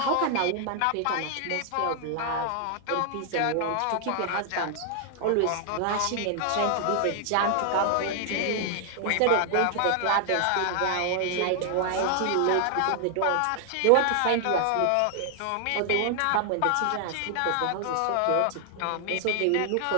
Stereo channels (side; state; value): both; different; correlation 0.00